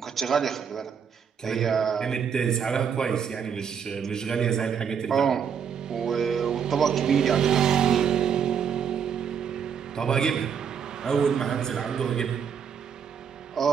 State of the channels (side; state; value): left; quieter; 7.4 dB